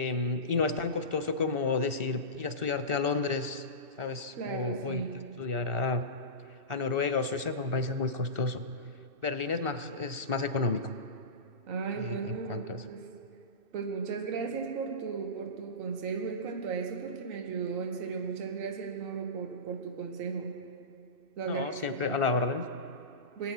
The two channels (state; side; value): late; left; 2.6 ms